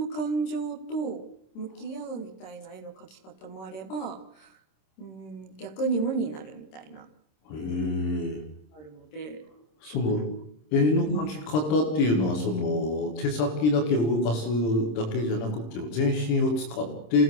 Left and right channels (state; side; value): late; right; 26 ms